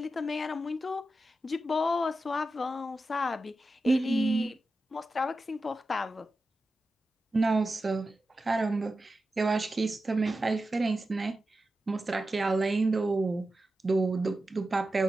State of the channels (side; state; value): both; normal; correlation 0.91